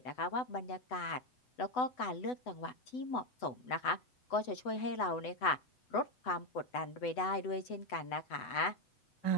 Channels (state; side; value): late; right; 8.0 ms